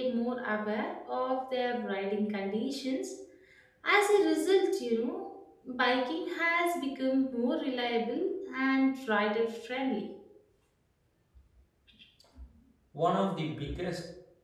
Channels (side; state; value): both; identical; correlation 1.00